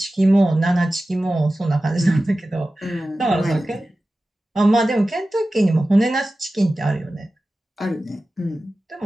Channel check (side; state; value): both; normal; correlation 0.95